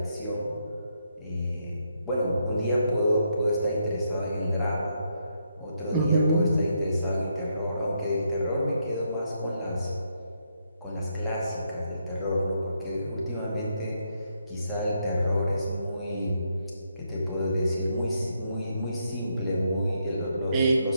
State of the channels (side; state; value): both; inverted; correlation -0.78